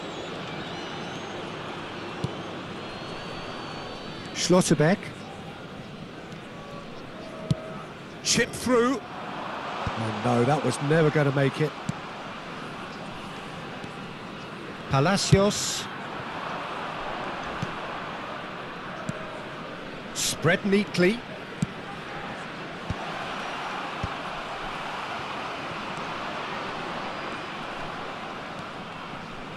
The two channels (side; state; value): both; identical; correlation 1.00